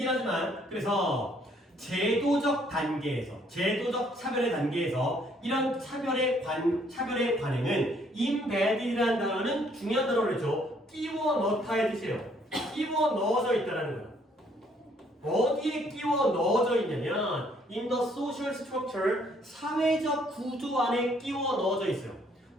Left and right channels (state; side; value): normal; both; correlation 0.65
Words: 하지만 그래서 제도적 단계에서, 제도적 차별의 단계에서 이런 차별의 관행은 embedded이라는 단어는 중요한 단어를 했죠. 끼워 넣다의 뜻이에요. 끼워 넣어져 있다라는 거야. 어디에 끼워 넣어져 있냐면 in the social structure, 사회적 구조 안에 끼워 넣어져 있어요.